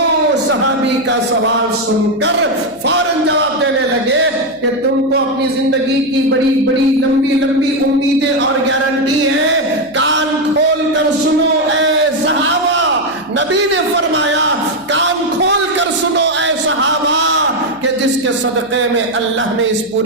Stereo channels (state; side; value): noise; left; hum, 29 dB below the sound